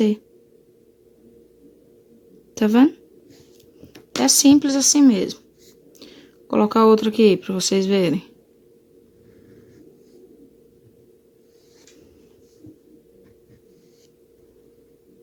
Tá vendo? É simples assim mesmo. Vou colocar outro aqui para vocês verem.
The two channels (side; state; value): both; identical; correlation 1.00